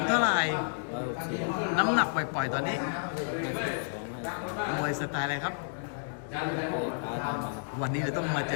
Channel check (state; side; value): silent; right; digital silence